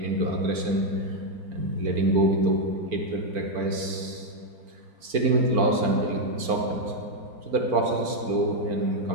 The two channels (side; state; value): left; late; 4.5 ms